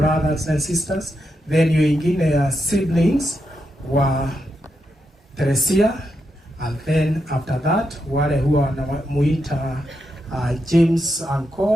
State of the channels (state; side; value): normal; both; correlation 0.84